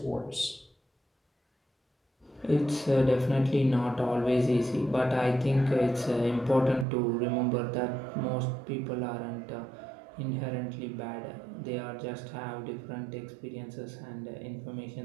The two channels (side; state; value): left; drops out; at 6.9 s